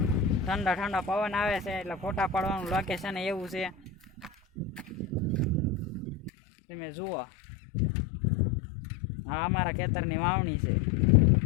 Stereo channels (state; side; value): drops out; right; at 6.3 s